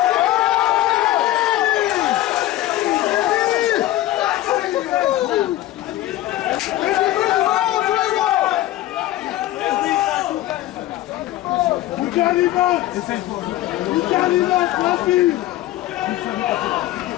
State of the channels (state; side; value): quieter; right; 15.0 dB